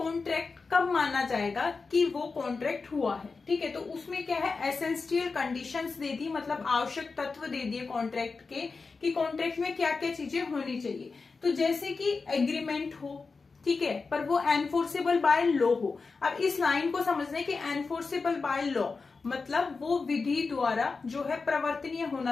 कब माना जाएगा कि वो कॉन्ट्रैक्ट हुआ है। ठीक है, तो उसमें क्या है, एसेंशियल कंडीशंस दे दी, मतलब आवश्यक तत्व दे दिए कॉन्ट्रैक्ट के कि कॉन्ट्रैक्ट में क्या क्या चीजें होनी चाहिए। तो जैसे कि एग्रीमेंट हो, ठीक है, पर वो एनफोर्सेबल बाय लॉ हो। अब इस लाइन को समझना है कि एनफोर्सेबल बाय लॉ मतलब वो विधि द्वारा जो है प्रवर्तनीय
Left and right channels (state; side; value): quieter; right; 4.4 dB